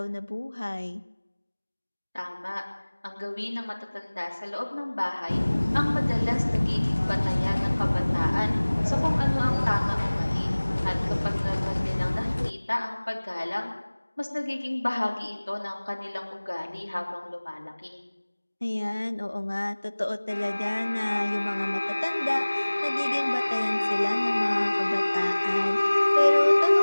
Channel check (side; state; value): both; inverted; correlation -1.00